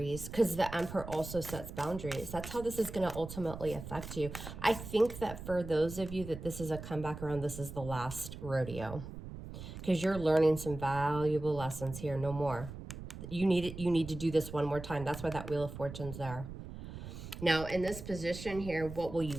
because the Emperor also sets boundaries. That's how this is going to ultimately affect you. I think that for those of you that this is a comeback around, this is the last rodeo, because you're learning some valuable lessons here. No more. You need to do this one more time. That's why that Wheel of Fortune's there. Now, in this position here, what will you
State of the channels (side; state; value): right; noise; rumble, 11 dB below the sound